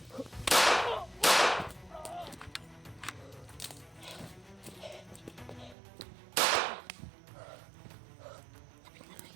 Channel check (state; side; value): drops out; left; at 5.8 s